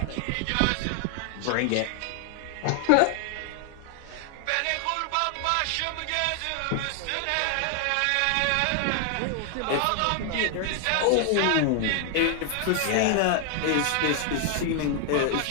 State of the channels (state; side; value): different; both; correlation 0.00